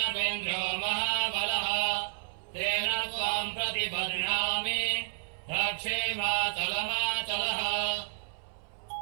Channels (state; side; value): silent; left; 57 dB below the other